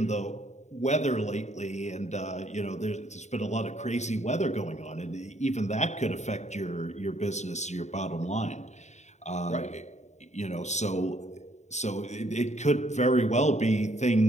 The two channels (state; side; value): late; right; 0.34 ms